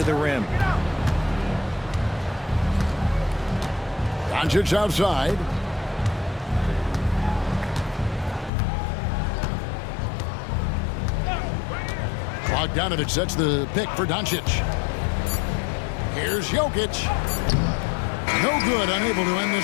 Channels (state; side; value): drops out; right; at 8.5 s